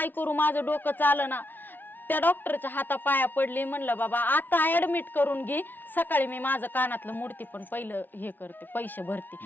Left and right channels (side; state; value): right; late; 0.089 ms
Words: करू, माझं डोकं चालं ना. त्या डॉक्टरच्या हातापाया पडली, म्हणलं बाबा आता ऍडमिट करून घे, सकाळी मी माझं कानातलं मूर्ती पण पहिलं हे करते, पैसे भरते.